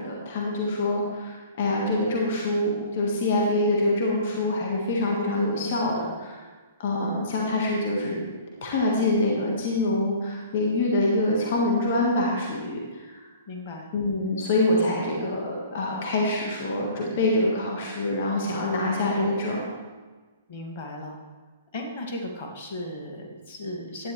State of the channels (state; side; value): inverted; both; correlation -0.47